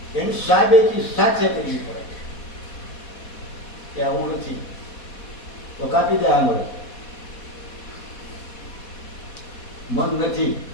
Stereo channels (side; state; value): right; late; 4.2 ms